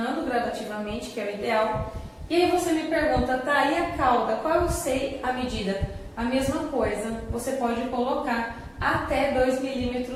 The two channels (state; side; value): identical; both; correlation 1.00